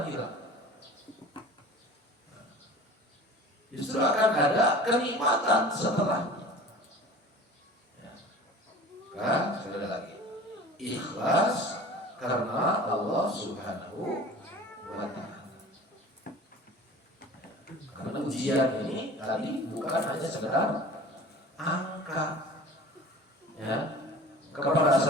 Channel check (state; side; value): normal; both; correlation 0.41